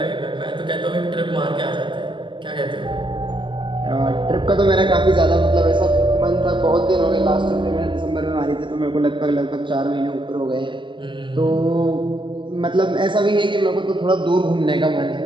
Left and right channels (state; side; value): late; left; 0.24 ms